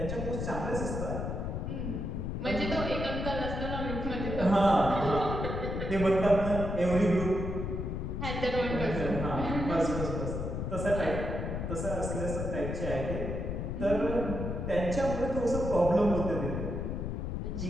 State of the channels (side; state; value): left; noise; rumble, 3 dB below the sound